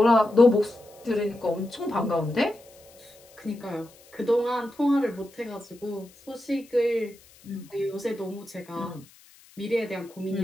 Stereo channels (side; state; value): left; noise; hiss, 26 dB below the sound